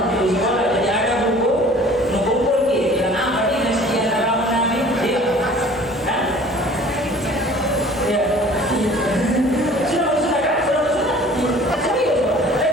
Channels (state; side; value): normal; both; correlation 0.48